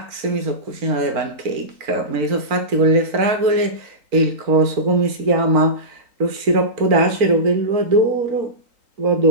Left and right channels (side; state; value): left; late; 4.4 ms